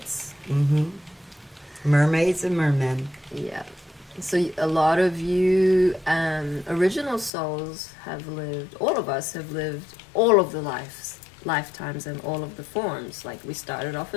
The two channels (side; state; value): right; drops out; at 7.3 s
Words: Mm-hmm. Mermaids and mermen. Yeah. So a lot of you original souls have lived, all of us have lived all of the lifetimes and all of the forms. Like, we started off